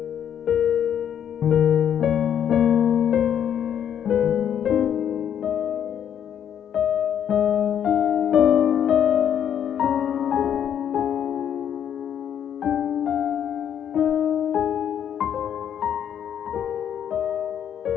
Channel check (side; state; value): right; quieter; 9.2 dB